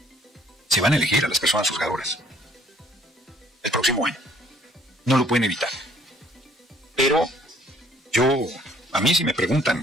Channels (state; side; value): normal; both; correlation 0.61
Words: Se van a elegir a las personas juzgadoras el próximo año. No lo pueden evitar. A mí si me